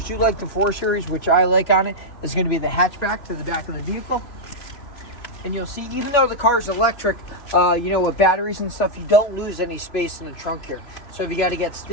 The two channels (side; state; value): right; late; 3.0 ms